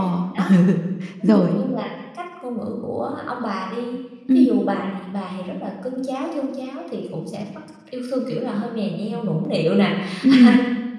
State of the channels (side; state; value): both; identical; correlation 1.00